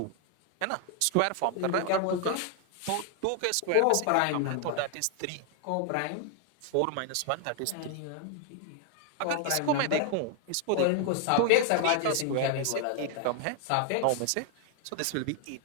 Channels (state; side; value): different; both; correlation 0.01